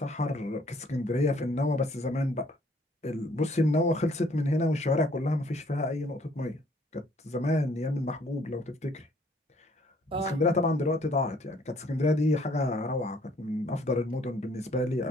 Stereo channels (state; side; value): normal; both; correlation 0.62